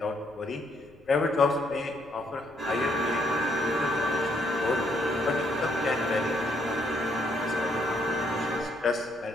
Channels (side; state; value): left; noise; rumble, 27 dB below the sound